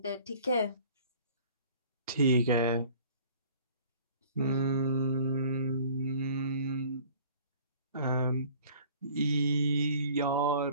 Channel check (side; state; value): both; inverted; correlation -0.50